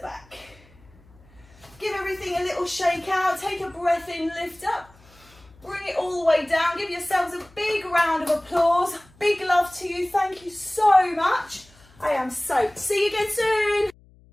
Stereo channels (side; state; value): left; noise; hum, 27 dB below the sound